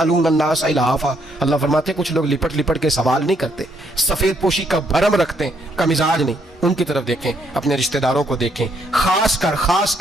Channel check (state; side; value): normal; both; correlation 0.72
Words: الناس الہافا، اللہ فرماتے ہیں کچھ لوگ لپٹ لپٹ کے سوال نہیں کرتے، سفید پوشی کا بھرم رکھتے ہیں، کا مزاج نہیں۔ ان کی طرف دیکھیں، اپنے رشتہ داروں کو دیکھیں، خاص